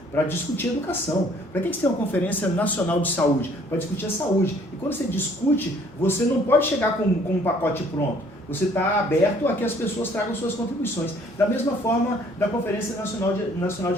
Para discutir educação. Para que você tem uma conferência nacional de saúde? Para discutir a saúde. E quando você discute, você não pode chegar com um pacote pronto. Você está aberto a que as pessoas tragam suas contribuições. Da mesma forma da Conferência Nacional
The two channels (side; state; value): both; normal; correlation 0.59